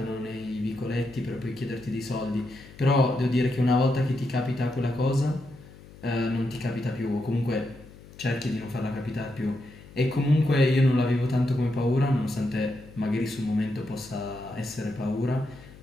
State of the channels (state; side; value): noise; left; hum, 20 dB below the sound